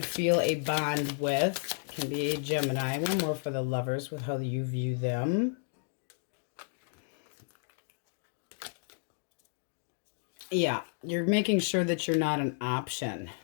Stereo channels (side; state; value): right; silent; 56 dB below the other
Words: feel a bond with. It can be a Gemini. One more for the Lovers with how you view them. Yeah, you're making sure that you're not an option,